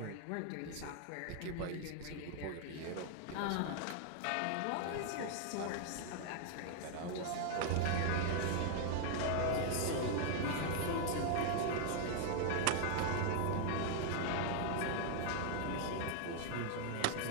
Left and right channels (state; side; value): different; both; correlation 0.00